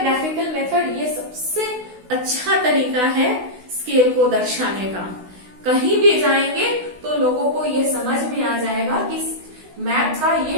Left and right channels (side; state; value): left; late; 16 ms